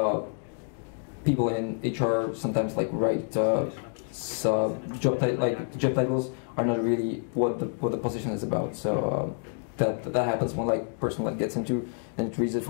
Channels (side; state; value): right; silent; 56 dB below the other